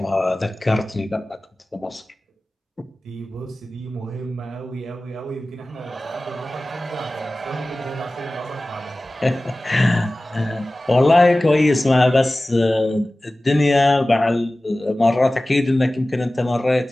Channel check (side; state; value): both; normal; correlation 0.97